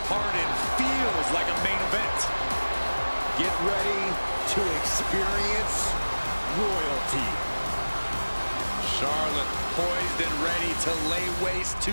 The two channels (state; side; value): inverted; both; correlation -1.00